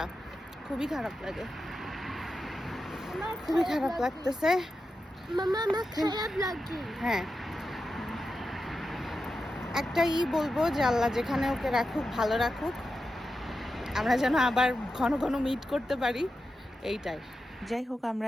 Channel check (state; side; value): normal; both; correlation 0.90